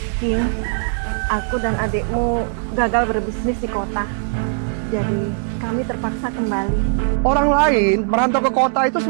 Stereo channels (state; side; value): silent; left; digital silence